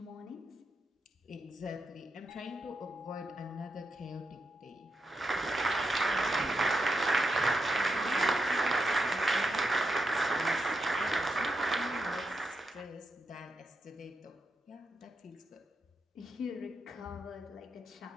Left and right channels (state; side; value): normal; both; correlation 0.85